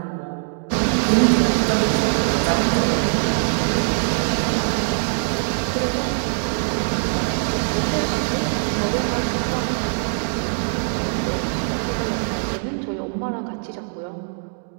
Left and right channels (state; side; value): silent; left; digital silence